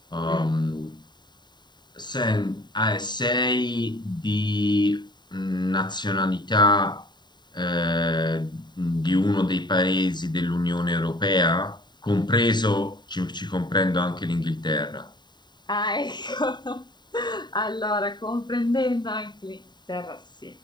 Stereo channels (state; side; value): late; right; 0.21 ms